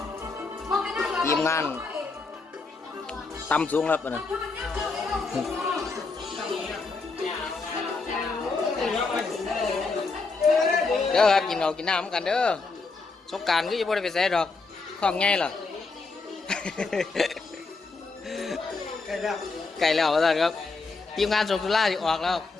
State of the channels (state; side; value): quieter; right; 4.0 dB